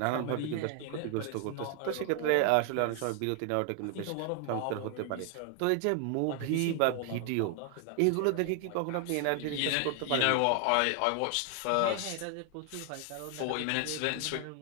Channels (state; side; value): different; both; correlation 0.00